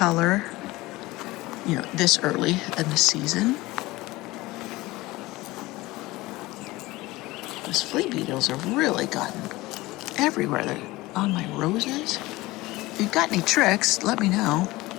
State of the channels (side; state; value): right; quieter; 19.8 dB